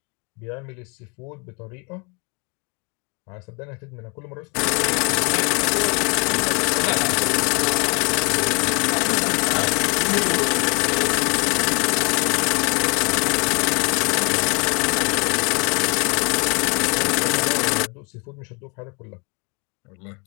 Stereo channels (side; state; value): right; quieter; 32.7 dB